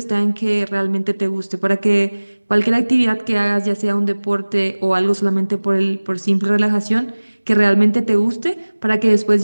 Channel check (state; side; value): inverted; both; correlation -1.00